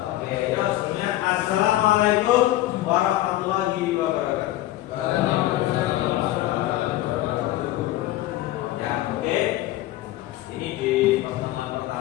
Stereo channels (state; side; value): quieter; right; 15.3 dB